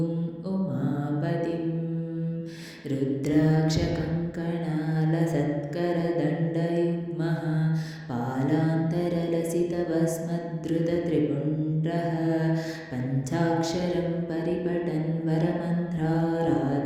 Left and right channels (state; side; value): identical; both; correlation 1.00